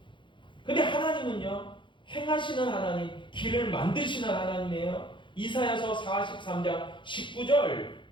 근데 하나님은요, 행하시는 하나님, 길을 만드시는 하나님이에요. 이사야서 43장 19절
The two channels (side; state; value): right; late; 0.23 ms